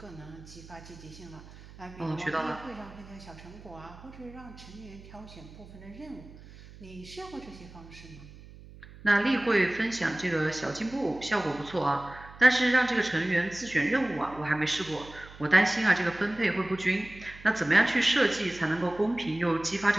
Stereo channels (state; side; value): noise; right; hum, 19 dB below the sound